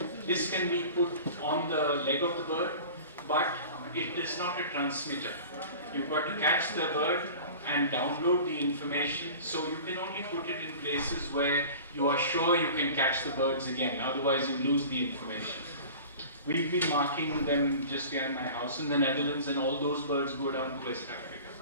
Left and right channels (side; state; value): both; inverted; correlation -0.39